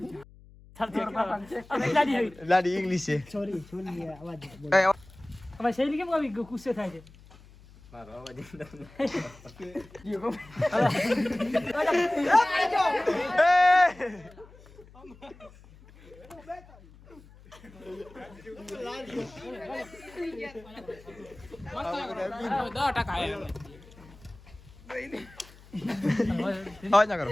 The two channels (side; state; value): left; noise; hum, 23 dB below the sound